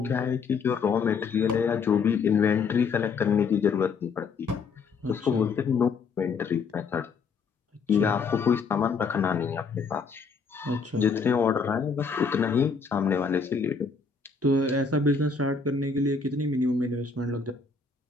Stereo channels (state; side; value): quieter; right; 5.1 dB